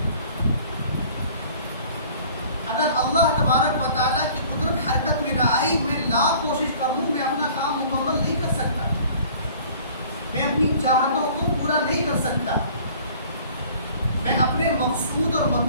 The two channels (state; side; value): inverted; both; correlation -0.50